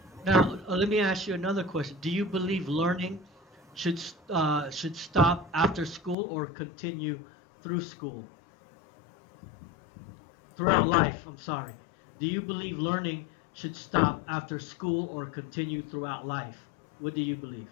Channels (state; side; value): drops out; right; at 6.2 s